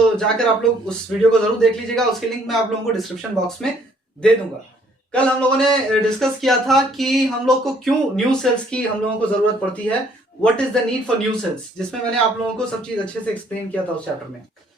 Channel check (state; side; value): normal; both; correlation 0.63